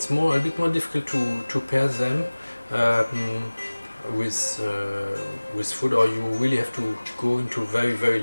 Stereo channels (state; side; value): inverted; both; correlation -1.00